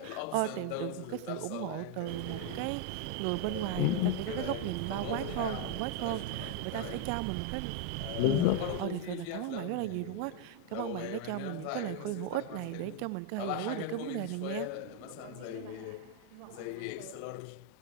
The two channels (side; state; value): both; different; correlation 0.00